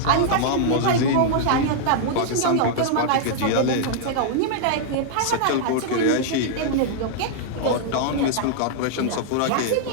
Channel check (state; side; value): different; both; correlation -0.01